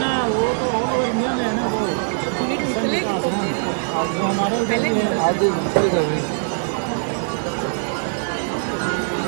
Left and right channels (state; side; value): silent; left; digital silence